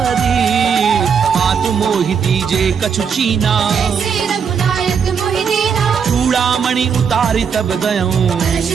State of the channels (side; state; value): left; quieter; 6.7 dB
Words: मातु मोहि दीजे कछु चीना। जैसे रघुनायक मोहि दीना, चूड़ामणि उतारी तब गयऊं। हर्ष